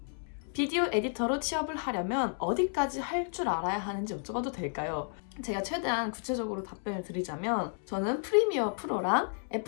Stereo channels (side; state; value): right; silent; 56 dB below the other